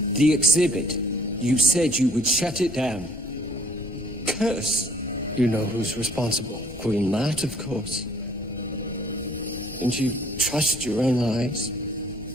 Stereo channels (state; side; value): normal; both; correlation 0.59